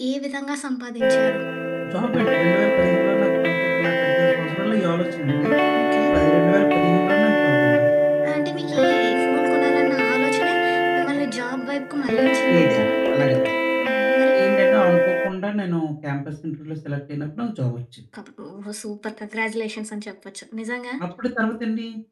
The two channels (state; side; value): identical; both; correlation 1.00